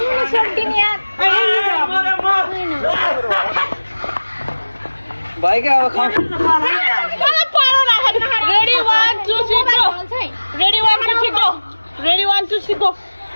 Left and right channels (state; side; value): inverted; both; correlation -1.00